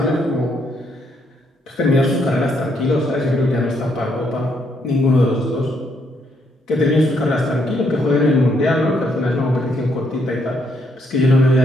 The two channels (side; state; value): both; normal; correlation 0.73